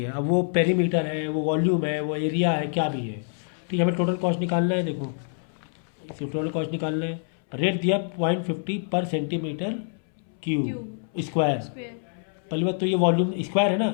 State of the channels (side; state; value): right; silent; 61 dB below the other